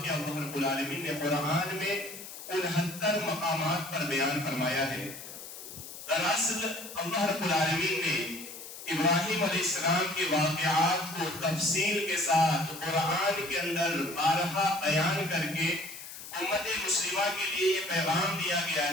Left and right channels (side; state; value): left; noise; hiss, 12 dB below the sound